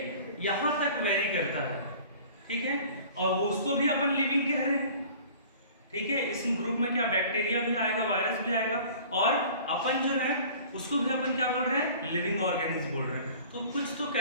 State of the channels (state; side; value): inverted; both; correlation -0.46